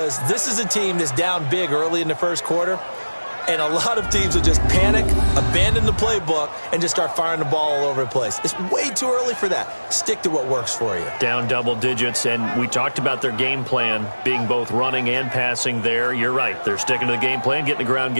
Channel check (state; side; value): inverted; both; correlation -1.00